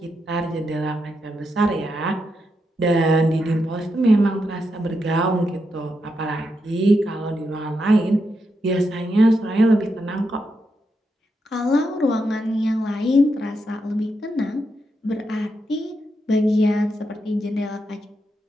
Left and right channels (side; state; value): both; normal; correlation 0.83